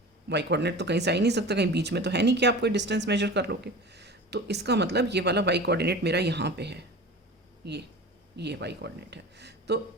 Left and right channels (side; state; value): both; normal; correlation 0.36